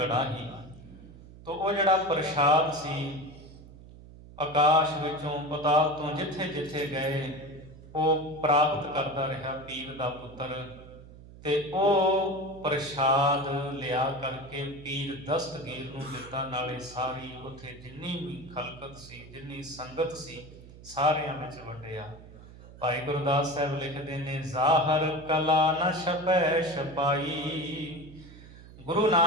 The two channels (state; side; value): noise; right; hum, 18 dB below the sound